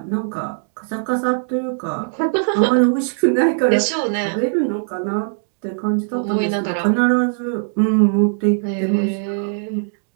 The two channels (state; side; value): silent; left; digital silence